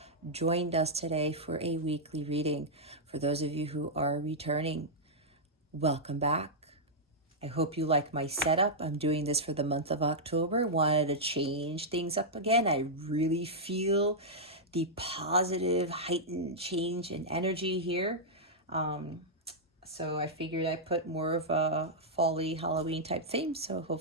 joined us today for a weekly reading. For those of you who are returning, welcome back. I hope you like my setup. I'm doing this for the month of October. Wanted to change things up again. I really feel the positive, heightened change in energy here. So I figured I'd put more of a fall-y Halloween type theme. So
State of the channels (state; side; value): normal; both; correlation -0.08